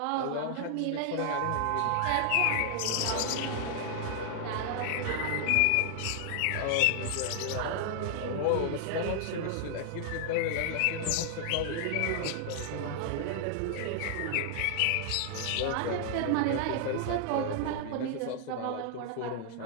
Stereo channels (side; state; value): both; different; correlation 0.00